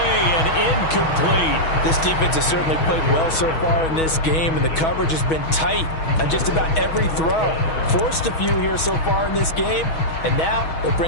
and incomplete. This defense has certainly played well so far in this game, and the coverage has been tight on just about every throw. Forced a few here so far in this game, and now it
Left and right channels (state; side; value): late; right; 6.2 ms